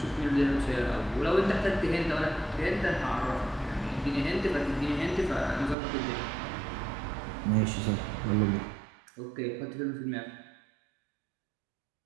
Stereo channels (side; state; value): left; drops out; at 5.8 s